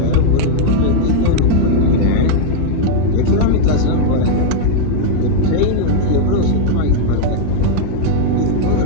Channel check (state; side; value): different; both; correlation -0.01